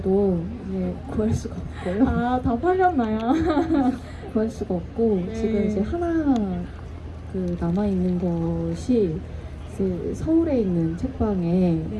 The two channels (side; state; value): both; identical; correlation 1.00